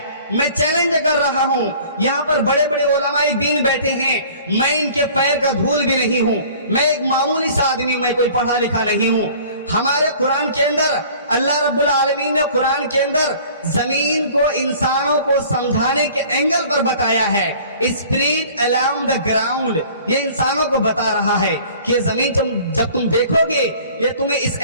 میں چیلنج کر رہا ہوں، یہاں پر بڑے بڑے علماء دین بیٹھے ہیں، میں ان کے پیر کا دھول بھی نہیں ہوں، میں ایک معمولی سا آدمی ہوں، میں کوئی پڑھا لکھا نہیں ہوں۔ ہمارے قرآن کے اندر اللہ رب العالمین نے قرآن کے اندر زمین کو انسانوں کو سمجھانے کے اینگل پر بتایا ہے۔ اسپرٹ along the ground، یہ انسانوں کو بتا رہا ہے کہ زمین جب تم دیکھو گے یہ تمہیں اس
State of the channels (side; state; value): both; inverted; correlation -0.49